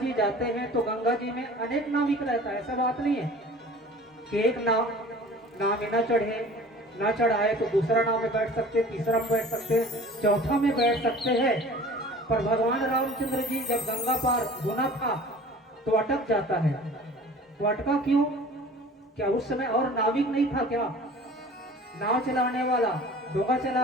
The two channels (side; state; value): both; normal; correlation 0.44